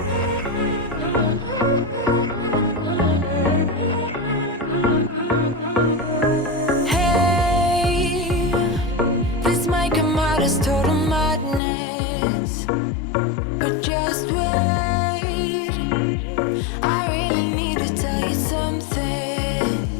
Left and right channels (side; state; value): right; drops out; at 11.6 s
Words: Hey, this might come out as total madness, but just wait. I really need to tell you something,